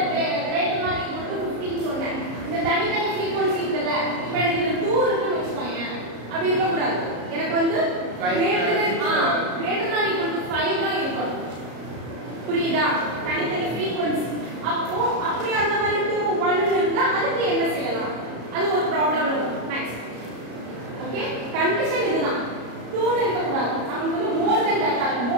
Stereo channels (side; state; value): left; late; 33 ms